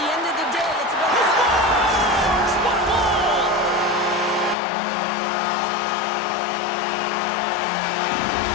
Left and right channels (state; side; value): drops out; right; at 4.5 s